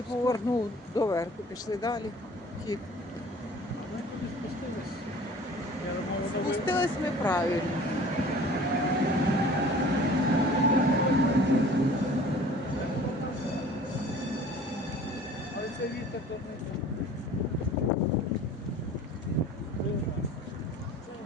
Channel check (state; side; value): normal; both; correlation 0.47